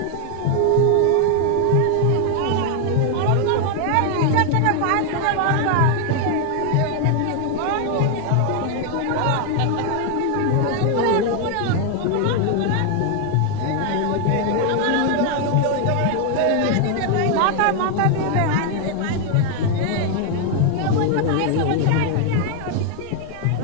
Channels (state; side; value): different; both; correlation 0.00